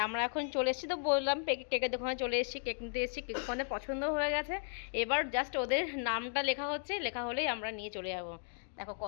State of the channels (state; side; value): silent; right; digital silence